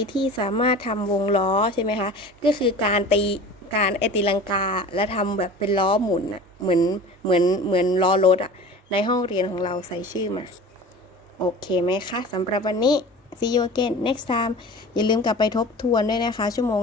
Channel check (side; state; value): both; normal; correlation 0.39